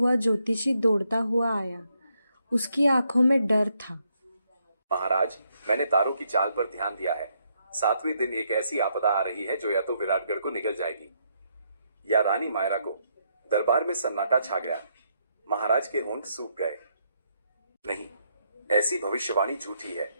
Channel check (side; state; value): both; inverted; correlation -0.76